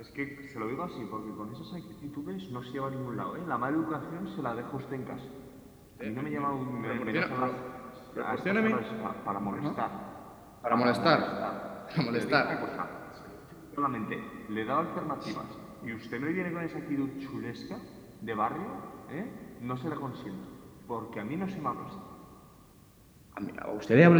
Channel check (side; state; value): both; identical; correlation 1.00